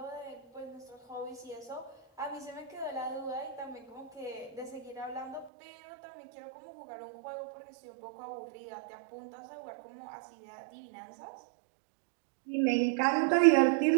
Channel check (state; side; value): drops out; left; at 5.5 s